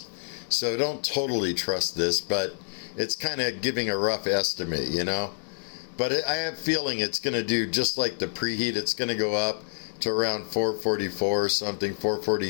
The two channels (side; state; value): right; silent; digital silence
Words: So don't totally trust this, but it's kind of giving a rough estimate, you know. But I have a feeling it's going to do just like the preheat. It's going to go up to around 444 or something,